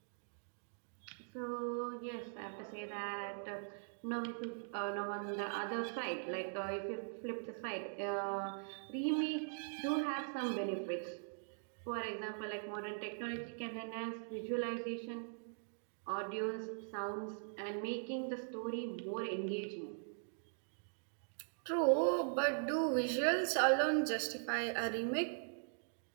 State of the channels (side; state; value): left; silent; digital silence